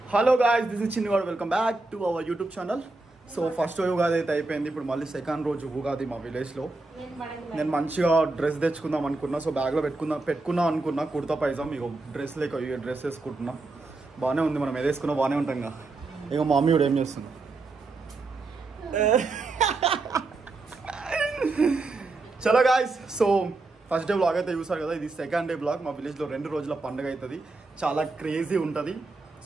Hello guys, this is Chinnivadu. Welcome back to our YouTube channel. So first Ugadi అయితే అయిపోయింది. ఇప్పుడు మళ్ళీ సెకండ్ రోజు ఉగాది మా విలేజ్లో. నేను మంచిగా డ్రెస్ తెచ్చుకుందాం అనుకున్నా. సో బ్యాగ్లో పెట్టుకుందాం అనుకున్నా కుర్తా పైజామ్. ఇక డ్రెస్ లేక డ్రెస్ వేసుకుంటున్నా. బాగానే ఉంది, మనం ఏదేసుకున్నా బాగానే ఉంటాం కదా. ఇక మా మమ్మీ కూడా ఏం చేస్తుంది. చలో guys, so first day blog అయితే చూసారు కదా. ఇది సెకండ్ డే బ్లాగ్. మా విలేజ్లో 2 రోజుల పండుగ అవుతుంది. చాలా క్రేజీ ఉంటుంది.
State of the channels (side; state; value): left; quieter; 3.4 dB